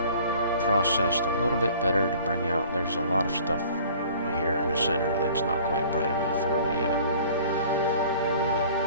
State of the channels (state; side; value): inverted; both; correlation -0.50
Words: processed a little bit better to bring out. There's a lot of stuff here in the center that's not quite bright enough for me yet.